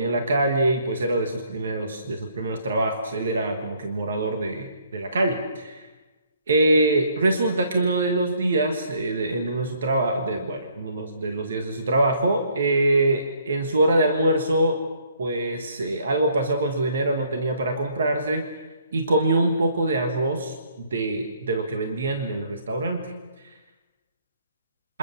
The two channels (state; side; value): inverted; both; correlation -0.65